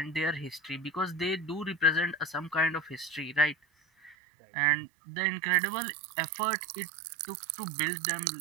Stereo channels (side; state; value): left; drops out; at 4.2 s